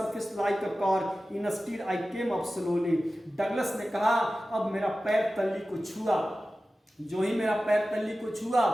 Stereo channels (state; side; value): normal; both; correlation 0.95